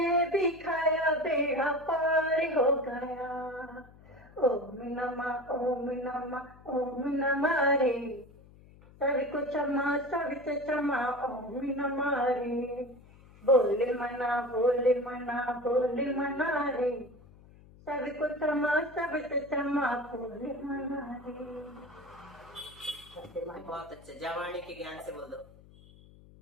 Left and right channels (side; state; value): left; noise; hum, 23 dB below the sound